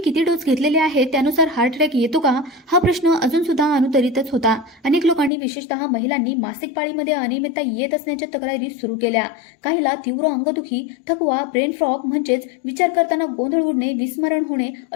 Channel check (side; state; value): right; drops out; at 5.3 s